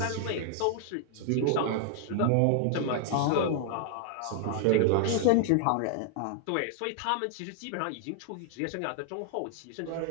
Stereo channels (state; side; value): different; both; correlation 0.00